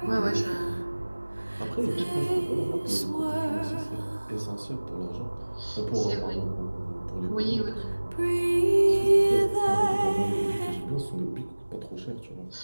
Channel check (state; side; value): inverted; both; correlation -1.00